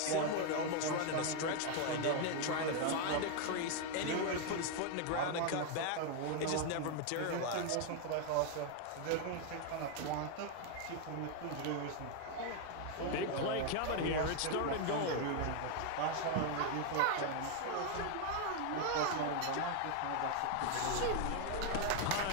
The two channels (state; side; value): different; both; correlation 0.01